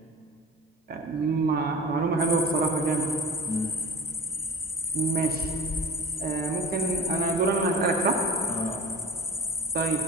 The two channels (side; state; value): both; normal; correlation 0.37